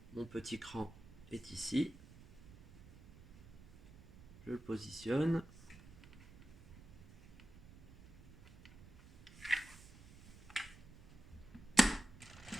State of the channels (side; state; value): right; noise; rumble, 20 dB below the sound